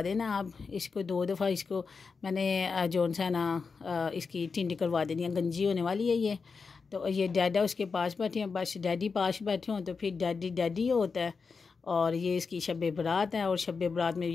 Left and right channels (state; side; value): quieter; right; 5.0 dB